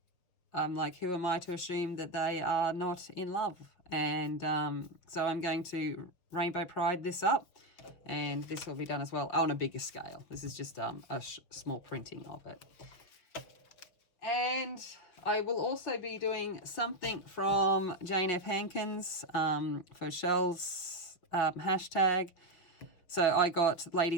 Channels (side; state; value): right; late; 6.0 ms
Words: I'm like, who am I to assume that they are not in love? And so I'm going to rainbow pride this up, and this will be done as well on a bigger scale. This is just a small printing of it. And I will also be doing something from Jane F. Hankins for Shell's hashtag. So I got